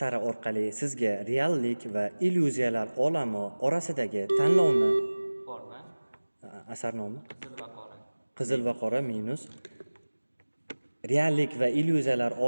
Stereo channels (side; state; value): both; inverted; correlation -1.00